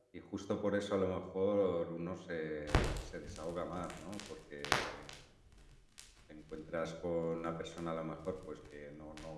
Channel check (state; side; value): identical; both; correlation 1.00